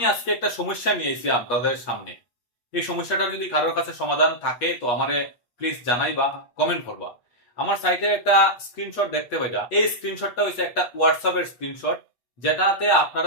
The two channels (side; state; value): right; late; 8.3 ms